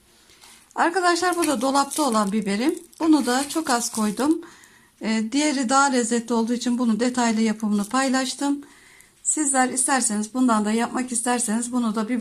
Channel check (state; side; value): identical; both; correlation 1.00